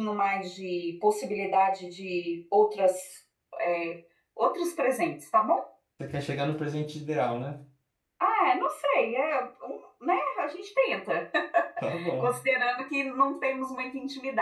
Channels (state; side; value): identical; both; correlation 1.00